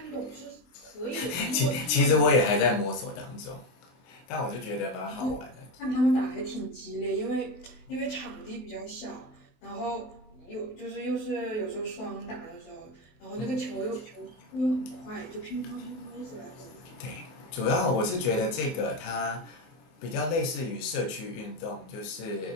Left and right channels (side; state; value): right; late; 24 ms